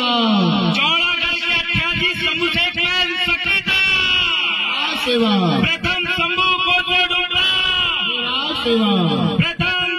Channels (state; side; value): identical; both; correlation 1.00